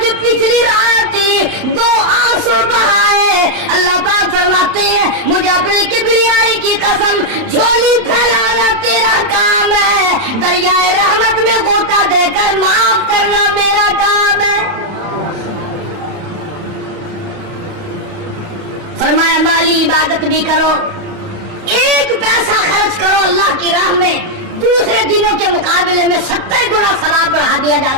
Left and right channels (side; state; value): left; late; 32 ms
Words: پچھلی رات 2 آنسو بہائے، اللہ پاک فرماتے ہیں مجھے اپنی کبریائی کی قسم، جھولی پھیلانا تیرا کام ہے، دریائے رحمت میں غوطہ دے کر معاف کرنا میرا کام ہے۔ فرمایا مالی عبادت بھی کرو، 1 پیسہ خرچ کرو اللہ کی راہ میں، دوسرے دنوں کے مقابلے میں 70 گنا ثواب بڑھا دیا